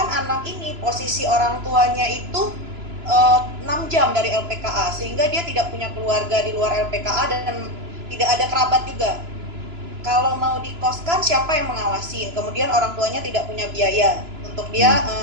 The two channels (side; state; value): left; late; 3.0 ms